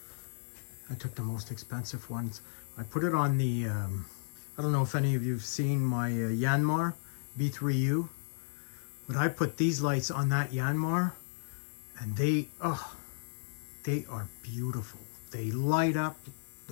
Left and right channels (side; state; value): right; silent; digital silence